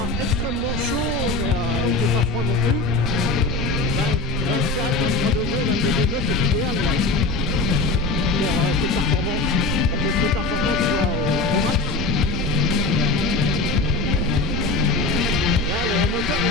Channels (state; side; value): quieter; right; 3.5 dB